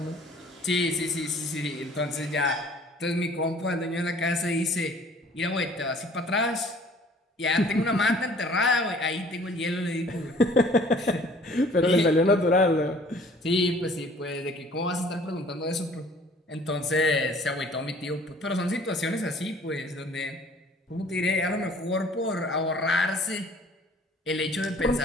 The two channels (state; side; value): normal; both; correlation 0.53